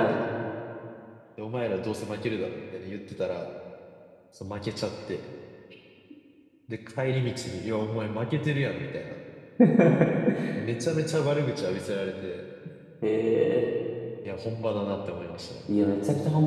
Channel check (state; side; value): identical; both; correlation 1.00